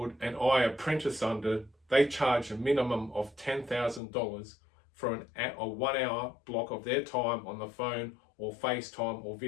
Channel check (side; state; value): right; drops out; at 4.0 s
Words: and I apprentice under, they charge a minimum of $10,000 for a 1 hour block of their time on the phone or FaceTime or